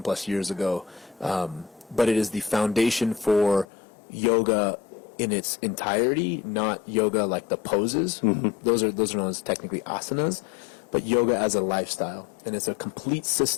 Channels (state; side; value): drops out; right; at 3.7 s